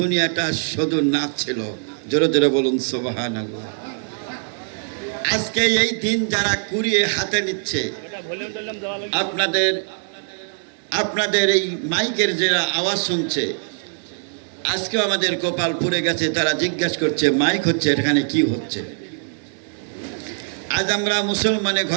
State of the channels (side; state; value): left; silent; digital silence